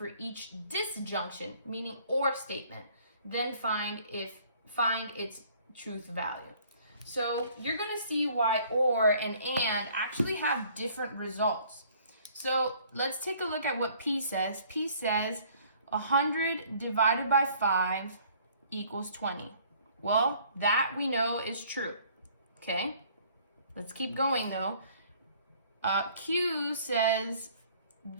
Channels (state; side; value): inverted; both; correlation -0.57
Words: each disjunction, meaning or statement. Then find its truth value. So you're going to see why or and actually have different results. So let's take a look at what P says. P says 100 divided by 5 equals 20. Well, that we know is true. Okay? Let's keep going though. Q says